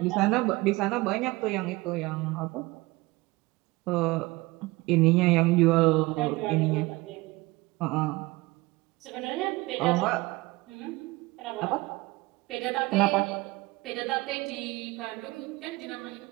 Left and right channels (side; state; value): left; quieter; 21.6 dB